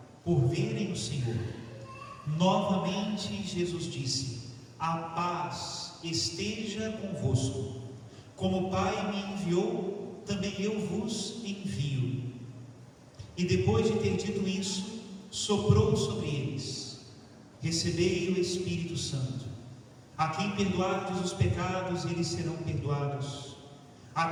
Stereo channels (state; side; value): identical; both; correlation 1.00